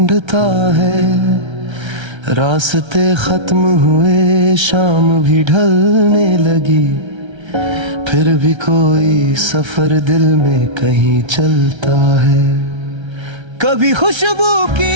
है। रास्ते खत्म हुए, शाम भी ढलने लगी, फिर भी कोई सफर दिल में कहीं चलता है। कभी खुशबू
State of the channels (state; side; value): late; left; 1.3 ms